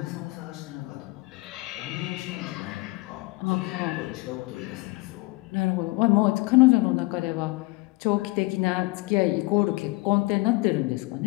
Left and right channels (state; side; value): quieter; right; 23.0 dB